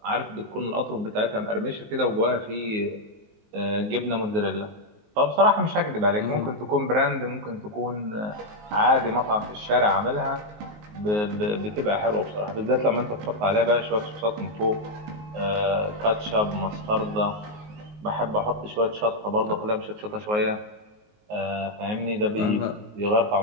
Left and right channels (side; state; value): left; late; 19 ms